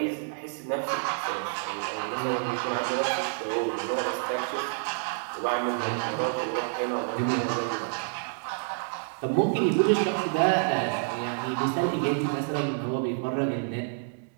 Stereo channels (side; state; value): left; silent; digital silence